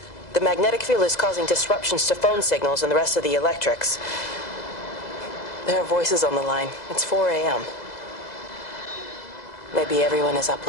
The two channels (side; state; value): right; late; 2.0 ms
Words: The magnetic field is causing disruptions to phone signals and the rest of the electrics. There are voices on the line. It's 4 a.m. Maybe everyone is up